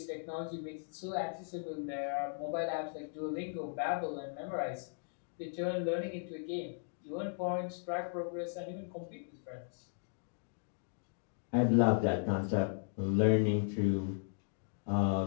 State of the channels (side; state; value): right; silent; digital silence